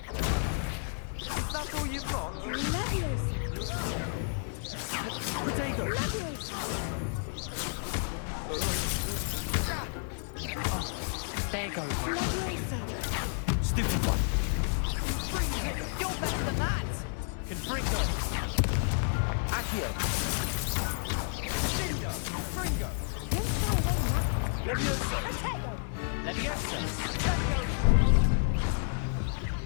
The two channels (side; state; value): right; silent; digital silence